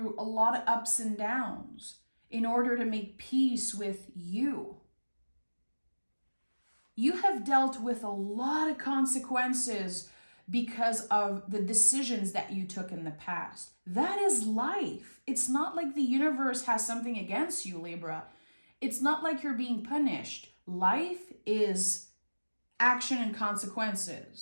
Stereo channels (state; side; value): inverted; both; correlation -1.00